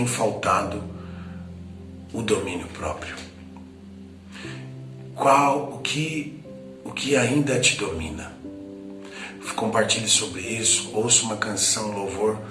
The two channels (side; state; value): both; identical; correlation 1.00